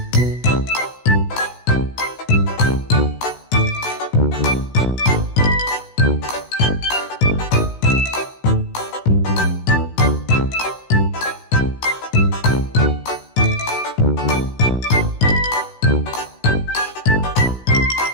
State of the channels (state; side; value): late; right; 16 ms